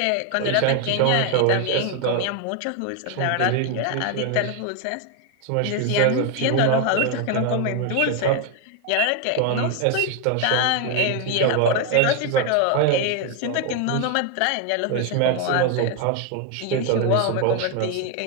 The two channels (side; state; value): both; different; correlation 0.01